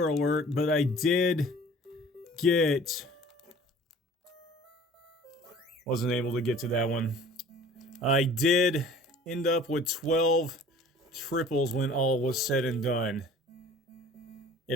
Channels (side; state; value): both; normal; correlation 0.47